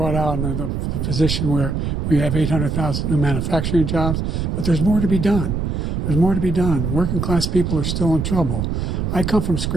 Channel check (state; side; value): noise; right; rumble, 1 dB below the sound